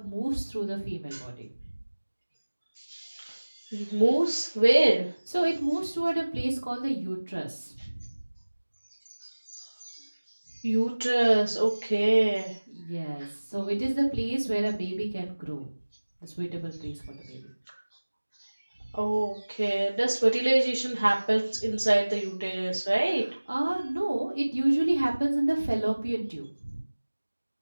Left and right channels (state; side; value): inverted; both; correlation -1.00